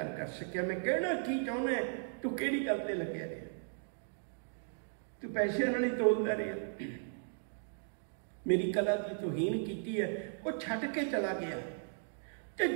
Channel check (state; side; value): silent; left; digital silence